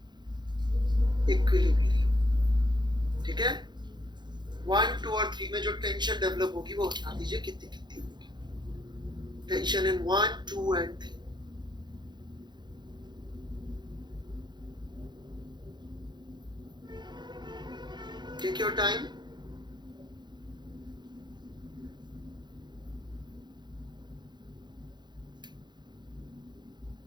body में जो टेंशन डेवलप होगी वो बता दीजिए कितनी कितनी होगी। Tension in 1, 2 and 3। Take your time.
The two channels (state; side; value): late; left; 0.21 ms